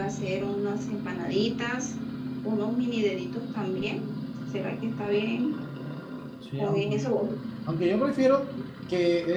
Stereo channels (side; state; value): both; identical; correlation 1.00